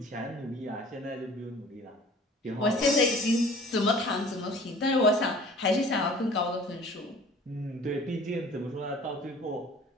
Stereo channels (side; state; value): both; normal; correlation 0.47